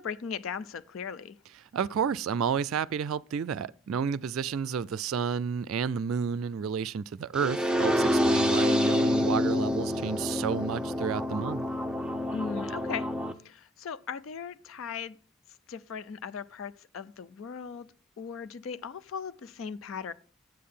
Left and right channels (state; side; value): normal; both; correlation 0.58